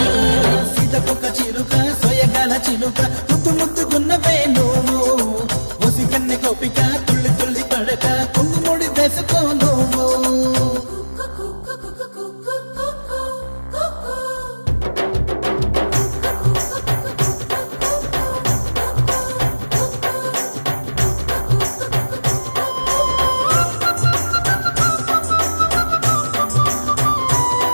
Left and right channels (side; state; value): both; inverted; correlation -1.00